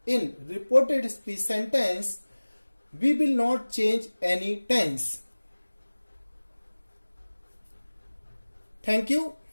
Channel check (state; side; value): inverted; both; correlation -1.00